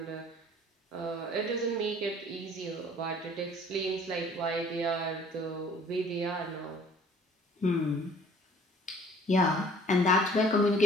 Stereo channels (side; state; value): both; normal; correlation 0.54